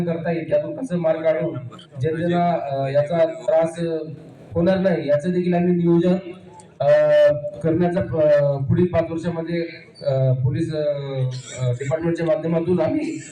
करता येईल, त्यातून कसं मार्ग काढून जनतेला याचा त्रास होणार नाही याचं देखील आम्ही नियोजन करण्याचा पुढील 5 वर्षामध्ये पोलीस डिपार्टमेंटच्या माध्यमातून आम्ही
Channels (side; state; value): both; identical; correlation 1.00